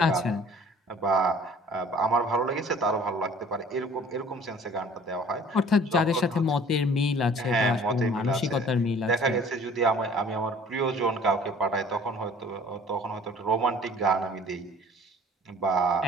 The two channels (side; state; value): both; normal; correlation 0.51